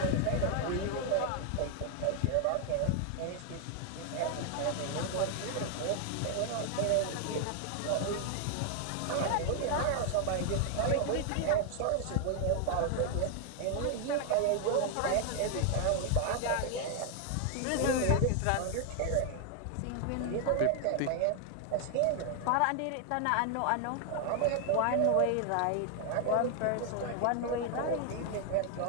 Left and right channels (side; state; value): both; different; correlation 0.00